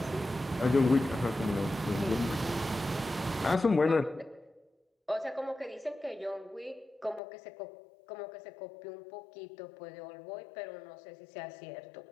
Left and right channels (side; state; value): right; drops out; at 7.2 s